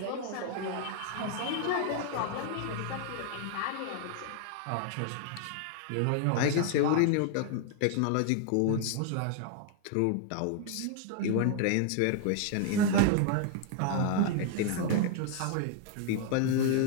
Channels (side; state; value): both; different; correlation 0.00